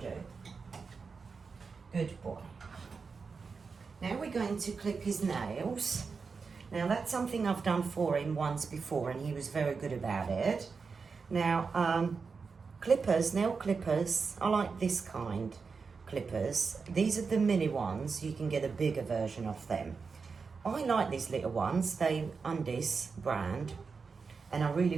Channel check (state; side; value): quieter; left; 5.0 dB